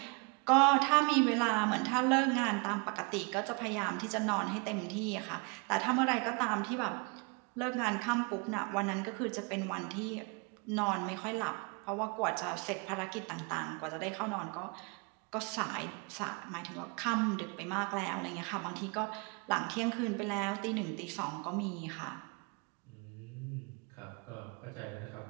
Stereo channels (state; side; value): quieter; left; 31.8 dB